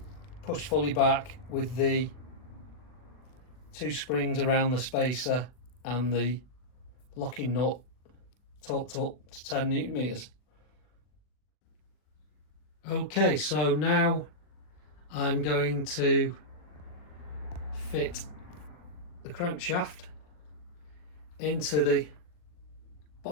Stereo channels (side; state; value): right; late; 39 ms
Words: pushed fully back with the 2 springs around the spacer and the locking nut torqued up to 10 Newton meters. Okay, so now I'm going to fit the crankshaft into the